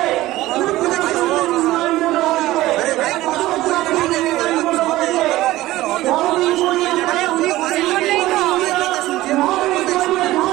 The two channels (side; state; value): left; quieter; 16.7 dB